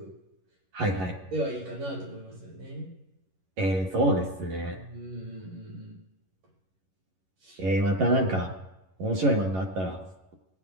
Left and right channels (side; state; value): left; late; 11 ms